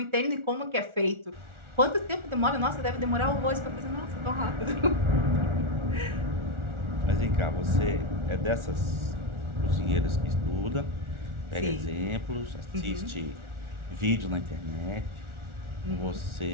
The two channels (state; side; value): late; left; 1.4 ms